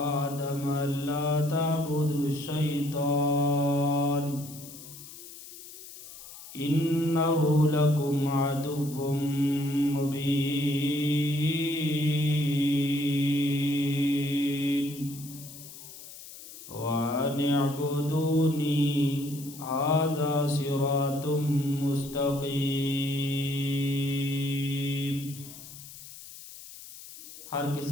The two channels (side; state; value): left; noise; hiss, 15 dB below the sound